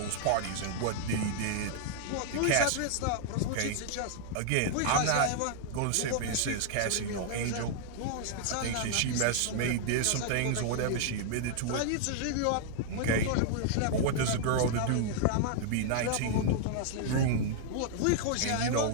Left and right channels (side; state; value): both; different; correlation -0.01